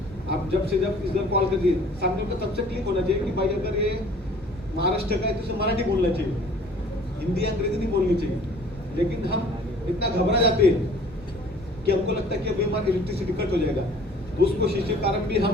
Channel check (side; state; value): both; normal; correlation 0.51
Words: आप जब से जब इधर कॉल करिए, सामने को सबसे क्लिक होना चाहिए कि भाई अगर ये महाराष्ट्र का है तो उसे मराठी बोलना चाहिए, हिंदी अंग्रेजी नहीं बोलनी चाहिए। लेकिन हम इतना घबरा जाते हैं कि हमको लगता है कि अभी हमारा इलेक्ट्रिसिटी कट हो जाएगा, तो उस कोशिश के कारण भी